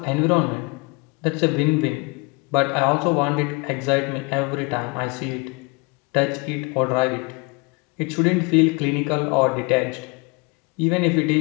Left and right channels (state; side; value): quieter; right; 29.7 dB